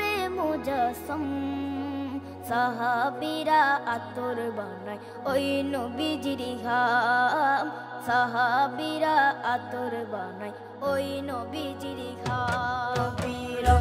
মুজাসম। সাহাবীরা আতর বানায় ওই নবীজির ঘাম, সাহাবীরা আতর বানায় ওই নবীজির ঘাম।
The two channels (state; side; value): identical; both; correlation 1.00